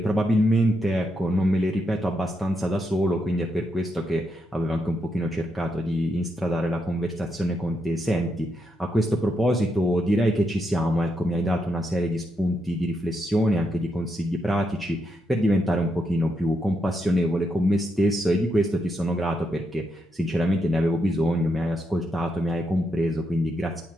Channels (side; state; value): both; normal; correlation 0.81